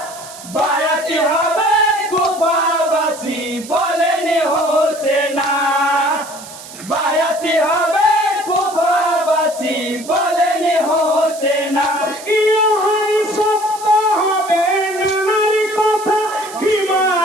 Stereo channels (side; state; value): right; noise; hiss, 15 dB below the sound